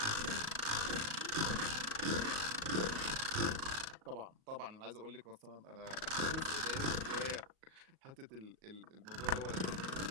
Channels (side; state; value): left; late; 38 ms